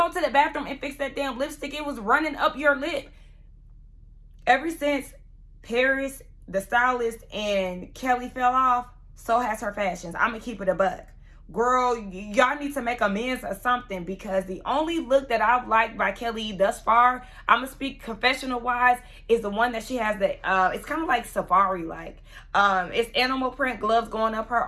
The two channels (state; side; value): identical; both; correlation 1.00